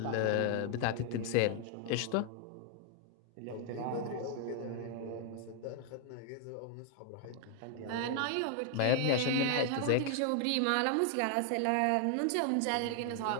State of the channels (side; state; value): both; different; correlation 0.00